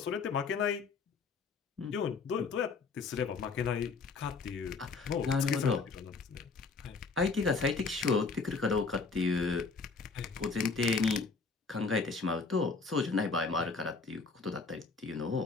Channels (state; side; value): quieter; right; 4.5 dB